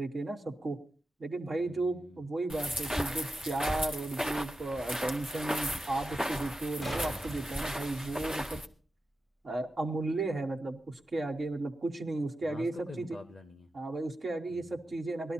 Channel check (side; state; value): both; normal; correlation 0.91